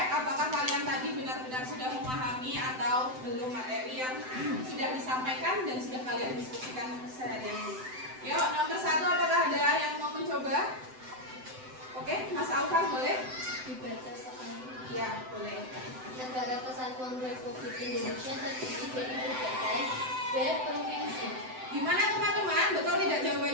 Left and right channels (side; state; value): left; late; 7.8 ms